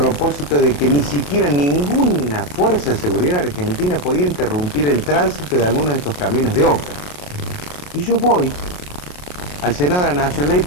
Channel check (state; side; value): late; right; 28 ms